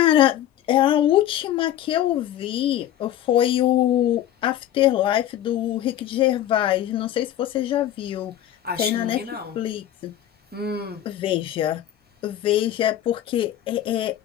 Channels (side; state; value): right; quieter; 11.9 dB